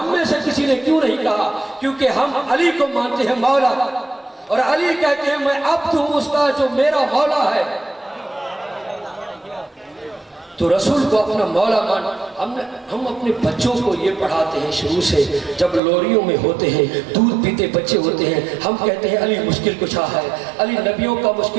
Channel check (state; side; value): drops out; left; at 15.8 s